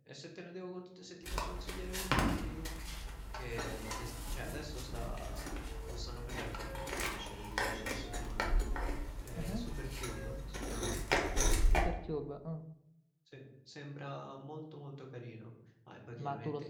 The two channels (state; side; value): identical; both; correlation 1.00